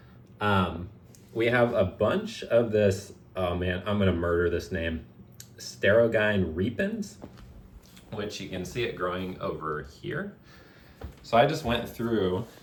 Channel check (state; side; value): identical; both; correlation 1.00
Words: We have a bunch of this, oh man, I'm gonna murder this name, Sterogine repens, which you can see it growing over here. So I just went through